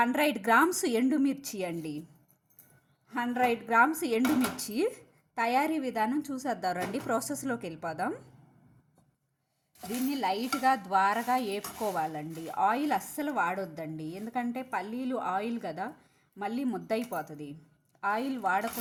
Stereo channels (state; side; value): identical; both; correlation 1.00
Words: గ్రామ్స్ ఎండుమిర్చి అండి. 100 గ్రామ్స్ ఎండుమిర్చి. తయారీ విధానం చూసేద్దాం రండి. ప్రాసెస్లోకి వెళ్ళిపోదాం. దీన్ని లైట్గా ద్వారగా వేపుకోవాలండి. ఆయిల్ అస్సలు వాడొద్దండి, ఎందుకంటే పల్లీలు ఆయిల్ కదా, మళ్ళీ ముద్దయిపోతుంది. ఆయిల్